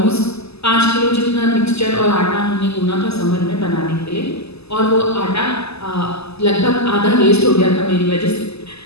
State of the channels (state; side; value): late; right; 0.79 ms